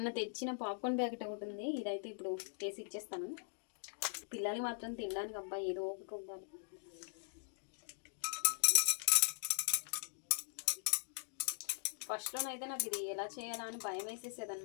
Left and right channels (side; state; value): right; silent; digital silence